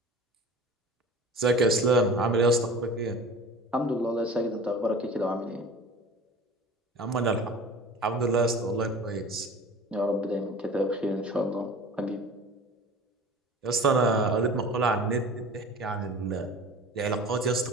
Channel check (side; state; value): both; normal; correlation 0.40